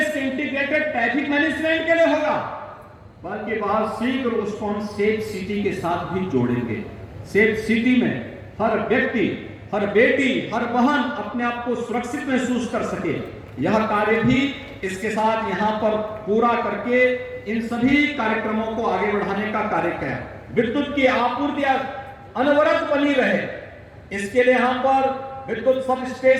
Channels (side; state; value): both; identical; correlation 1.00